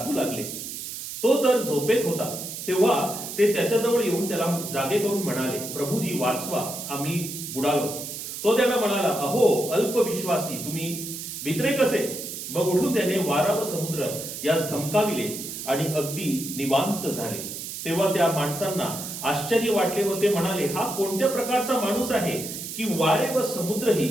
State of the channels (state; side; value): noise; right; hiss, 8 dB below the sound